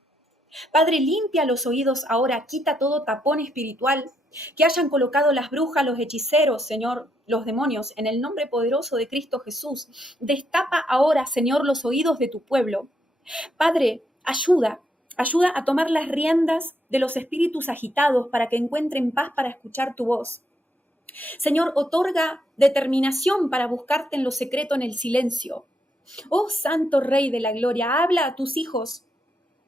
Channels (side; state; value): both; normal; correlation 0.77